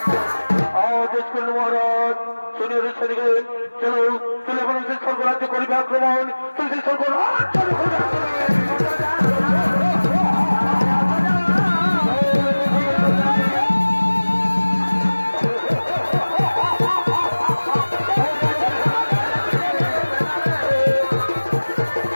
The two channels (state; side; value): inverted; both; correlation -1.00